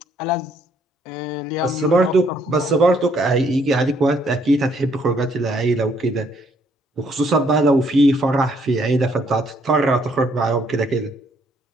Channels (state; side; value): normal; both; correlation 0.68